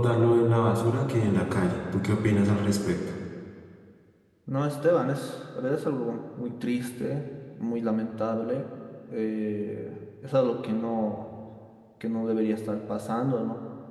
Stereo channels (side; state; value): both; identical; correlation 1.00